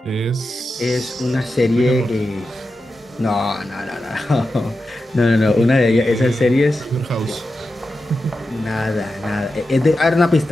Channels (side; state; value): both; normal; correlation 0.90